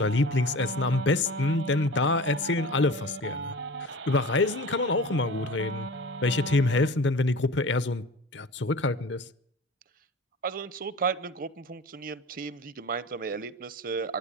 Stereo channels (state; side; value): normal; both; correlation 0.37